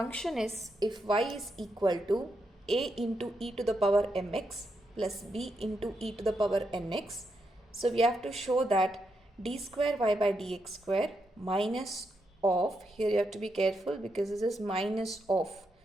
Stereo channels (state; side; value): normal; both; correlation 0.82